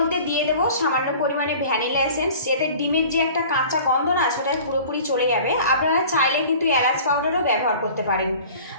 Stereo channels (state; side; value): inverted; both; correlation -0.44